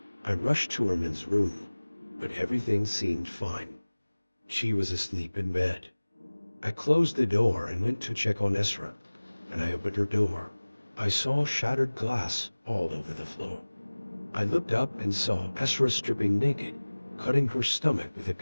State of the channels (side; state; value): both; inverted; correlation -1.00